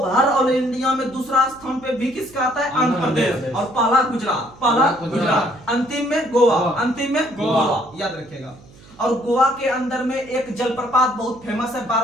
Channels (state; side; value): noise; right; hum, 24 dB below the sound